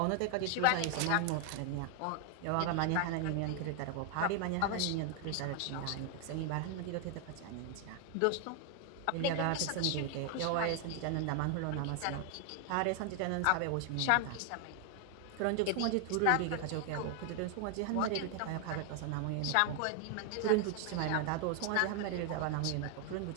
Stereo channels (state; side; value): different; both; correlation 0.00